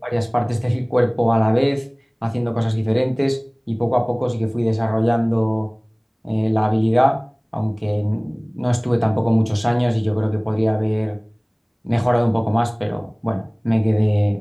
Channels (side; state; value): both; identical; correlation 1.00